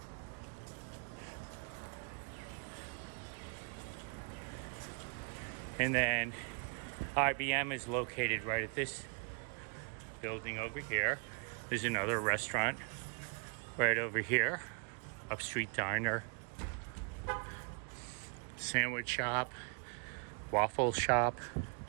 And then IBM is located right at this building over here. There's another restaurant right over here, Upstreet Diner, sandwich shop, waffle shop.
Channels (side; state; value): left; quieter; 39.0 dB